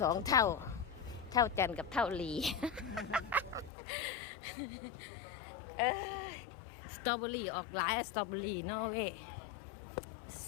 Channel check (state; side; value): drops out; right; at 3.7 s